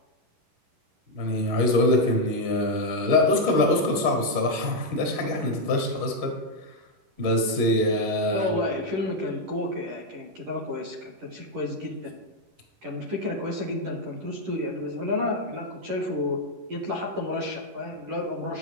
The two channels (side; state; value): left; late; 11 ms